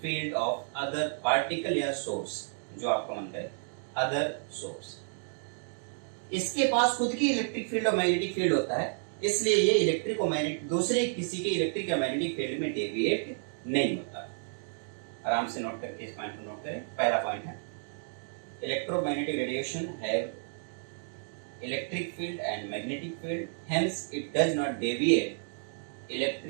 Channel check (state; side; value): silent; left; digital silence